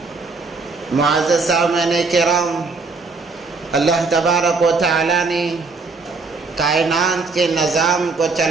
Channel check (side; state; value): left; quieter; 4.1 dB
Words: معزز سامعین کرام اللہ تبارک و تعالیٰ نے کائنات کے نظام کو